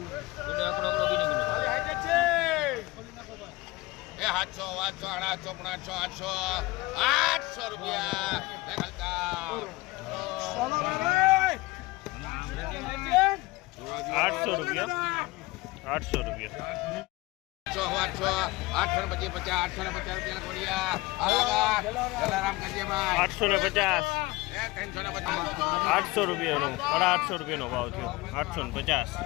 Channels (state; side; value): quieter; right; 21.4 dB